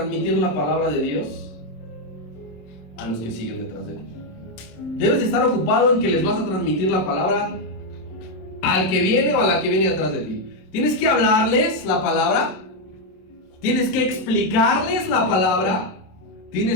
la palabra de Dios a los que siguen detrás de ti. Debes de estar ocupado en que les vas a transmitir la palabra al que viene o a la que viene detrás de ti. Tienes que hablarles la palabra, tienes que explicarles la palabra,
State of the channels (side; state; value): right; late; 27 ms